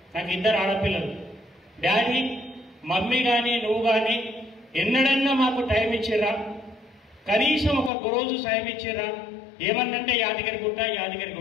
నాకు 2 ఆడపిల్లలు, డాడీ మమ్మీ కానీ నువ్వు కానీ ఎన్నడన్నా మాకు టైం ఇచ్చిర్రా, కనీసం ఒక రోజు సాయం ఇచ్చిర్రా, ఏమన్నంటే యాదగిరి గుట్ట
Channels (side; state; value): right; drops out; at 7.9 s